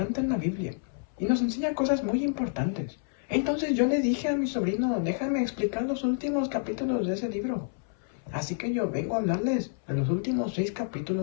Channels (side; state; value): right; silent; 59 dB below the other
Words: en la Biblia y nos enseña cosas muy importantes. Entonces yo le dije a mi sobrino, déjame explicar los últimos capítulos de ese libro. Así que yo vengo a hablarles de los últimos 6